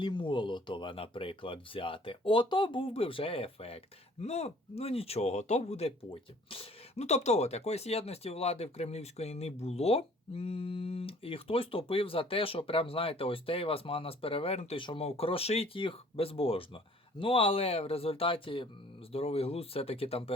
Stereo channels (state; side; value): normal; both; correlation 0.54